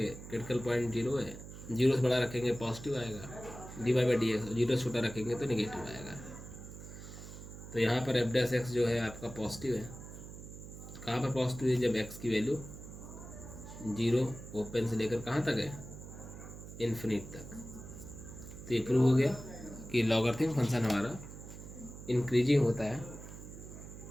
क्रिटिकल पॉइंट 0 है, 0 से बड़ा रखेंगे पॉजिटिव आएगा, dy/dx 0 से छोटा रखेंगे तो नेगेटिव आएगा। तो यहाँ पर f' जो है आपका पॉजिटिव है। कहाँ पर पॉजिटिव है? जब x की वैल्यू 0 ओपन से लेकर कहाँ तक है, इन्फिनिट तक। तो ये प्रूव हो गया कि लॉगरिथम फंक्शन हमारा इंक्रीजिंग होता है,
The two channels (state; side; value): noise; right; hum, 13 dB below the sound